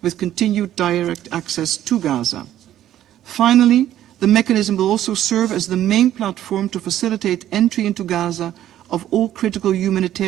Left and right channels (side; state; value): left; quieter; 12.1 dB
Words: with continued direct access to Gaza. Finally, the mechanism will also serve as the main platform to facilitate entry into Gaza of all critical